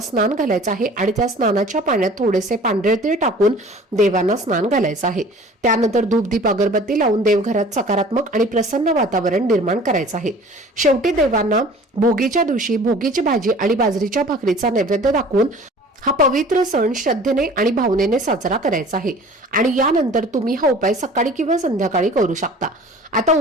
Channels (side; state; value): both; normal; correlation 0.46